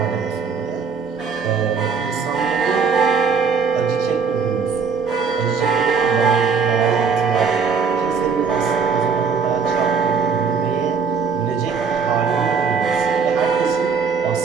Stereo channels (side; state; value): left; quieter; 5.7 dB